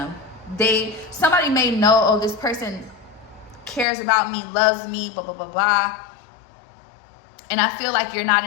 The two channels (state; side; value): drops out; right; at 3.9 s